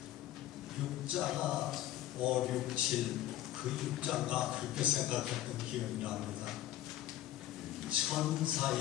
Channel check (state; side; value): quieter; right; 13.5 dB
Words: 육자가 5, 6, 7, 그 육자가 그렇게 생각했던 기억이 납니다.